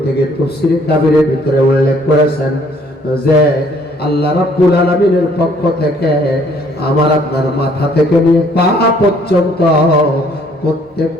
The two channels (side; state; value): both; normal; correlation 0.62